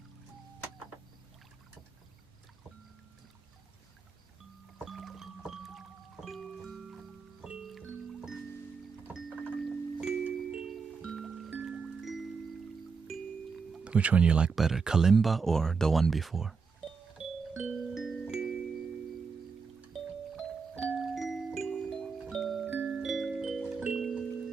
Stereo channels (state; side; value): quieter; left; 5.3 dB